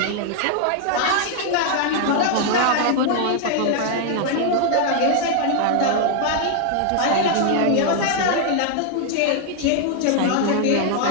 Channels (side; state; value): both; different; correlation 0.00